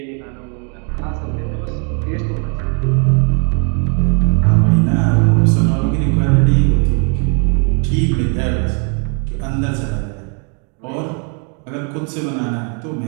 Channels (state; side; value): quieter; left; 38.7 dB